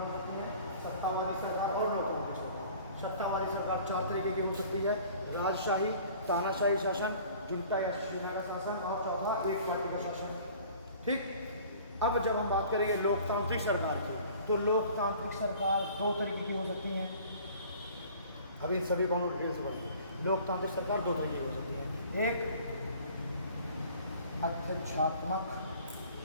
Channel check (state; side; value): inverted; both; correlation -0.49